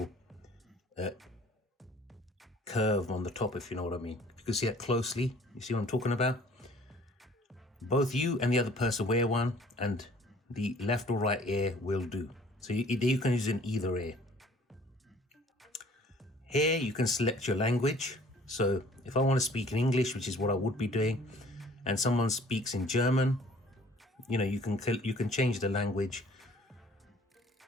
curve on the top, if you know what I mean. You can see it closely. You see what I'm talking about? Both you and the other person wear one, and the left or right ear will do. So you can use it in either ear. Here you can select your language. So if I want to speak in English, which is what I would be doing, and someone speaks in German, you know, you can change the language.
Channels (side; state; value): both; normal; correlation 0.54